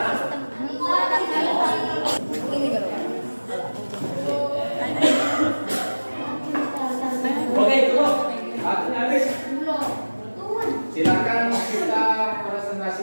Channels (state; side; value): inverted; both; correlation -1.00